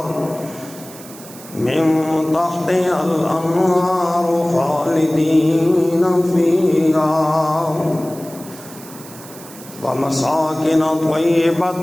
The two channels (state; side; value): noise; right; hiss, 18 dB below the sound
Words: الأنهار خالدين فيها ومساكن